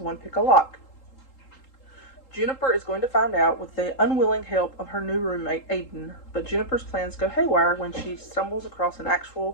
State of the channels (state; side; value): late; right; 3.8 ms